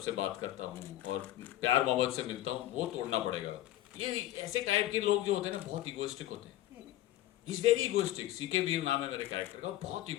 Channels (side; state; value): right; quieter; 14.3 dB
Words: बात करता हूँ और प्यार मोहब्बत से मिलता हूँ, वो तोड़ना पड़ेगा। ये ऐसे टाइप के लोग जो होते हैं ना, बहुत इगोइस्टिक होते हैं। Is very egoistic. सीके वीर नाम है मेरे कैरेक्टर का, बहुत